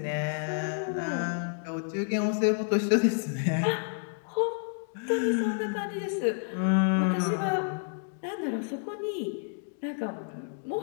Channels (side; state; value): right; silent; digital silence